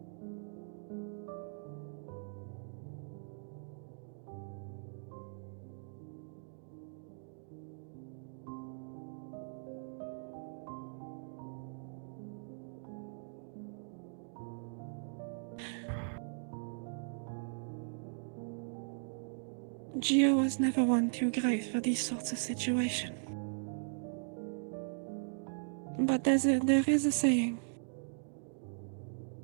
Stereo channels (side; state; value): left; silent; digital silence